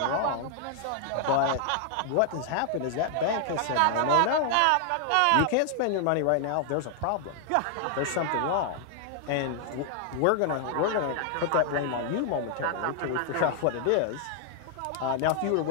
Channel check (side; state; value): both; different; correlation 0.00